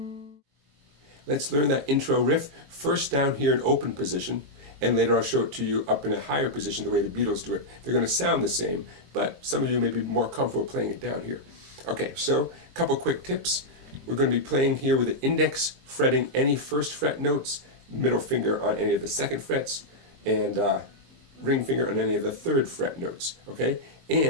Let's learn that intro riff first down here in open position, and later I'll show it to you up in a higher position the way the Beatles do it. They're going to sound the same, but some of you may be more comfortable playing it down here. Okay, so a couple quick tips. We're going to be playing here with the index fretting any first fret notes, middle finger on any of the second frets, and ring finger on any of the third fret notes. Okay,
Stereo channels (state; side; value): late; left; 22 ms